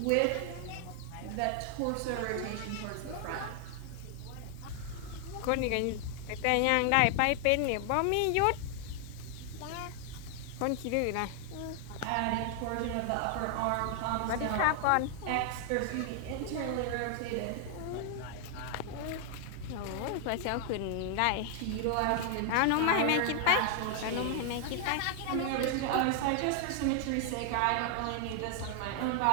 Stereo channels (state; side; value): different; both; correlation 0.00